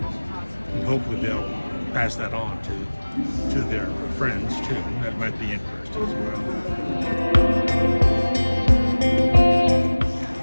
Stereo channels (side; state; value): both; inverted; correlation -1.00